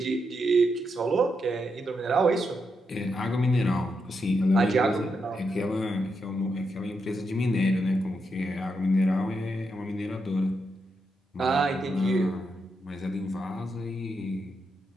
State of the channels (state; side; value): normal; both; correlation 0.83